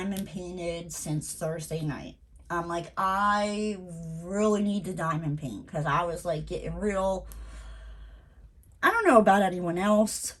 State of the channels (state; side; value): identical; both; correlation 1.00